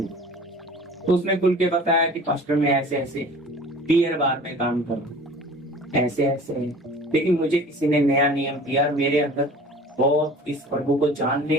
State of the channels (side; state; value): both; normal; correlation 0.44